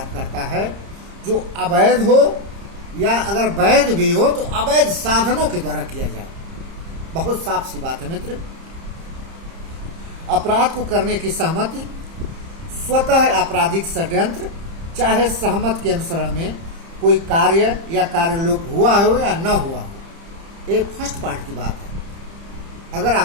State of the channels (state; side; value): late; left; 30 ms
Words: करता है जो अवैध हो या अगर वैध भी हो तो अवैध साधनों के द्वारा किया जाए। बहुत साफ सी बात है मित्र। अपराध को करने की सहमति स्वतः आपराधिक षड्यंत्र, चाहे सहमत के अनुसरण में कोई कार्य या कार्यलोप हुआ हो या न हुआ हो। ये फर्स्ट पार्ट की बात है। अगर